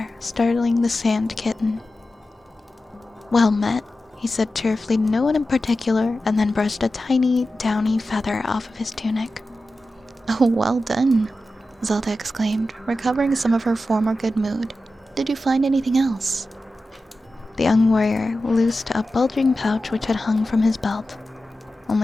startling the sand kitten. Well met, he said cheerfully to no one in particular, and then brushed a tiny, downy feather off of his tunic. Oh, well done, Zelda exclaimed, recovering some of her former good mood. Did you find anything else? The young warrior loosed a bulging pouch which had hung from his belt.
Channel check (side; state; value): both; normal; correlation 0.92